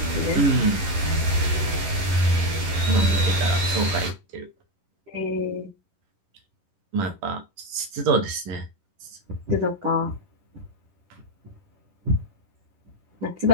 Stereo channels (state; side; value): late; left; 11 ms